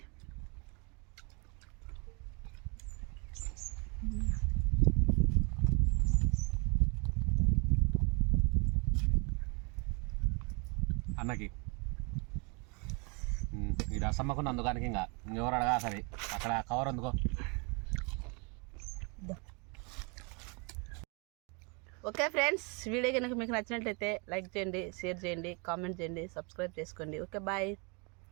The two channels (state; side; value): quieter; left; 32.7 dB